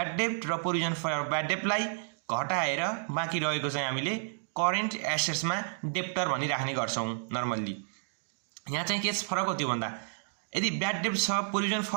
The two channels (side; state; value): left; silent; digital silence